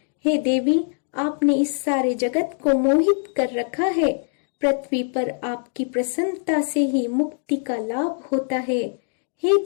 हे देवी, आपने इस सारे जगत को मोहित कर रखा है। पृथ्वी पर आपकी प्रसन्नता से ही मुक्ति का लाभ होता है। हे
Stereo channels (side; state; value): right; silent; 64 dB below the other